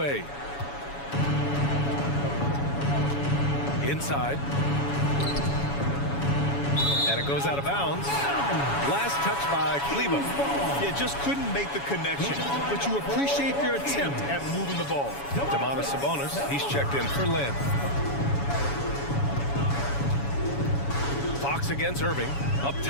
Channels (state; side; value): late; right; 7.1 ms